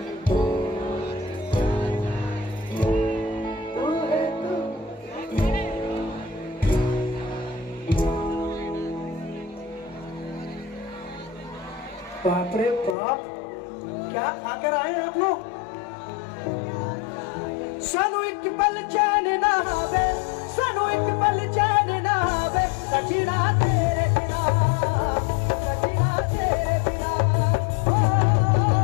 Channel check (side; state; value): right; drops out; at 13.0 s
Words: बाप रे बाप, क्या खाकर आए आप लोग। सानू एक पल चैन ना आवे, सानू एक पल चैन ना आवे, सजना तेरे बिना, सजना तेरे बिना, ओ